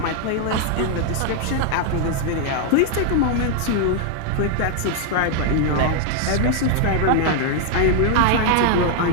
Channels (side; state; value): both; different; correlation 0.00